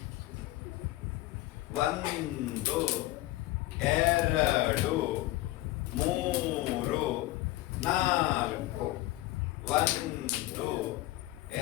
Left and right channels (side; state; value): right; quieter; 17.4 dB